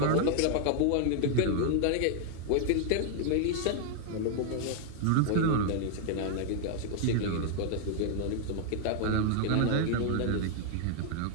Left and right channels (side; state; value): both; different; correlation 0.00